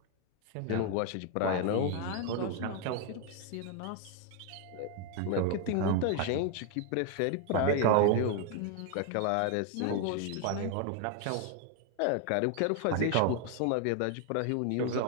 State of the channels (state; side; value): different; both; correlation 0.00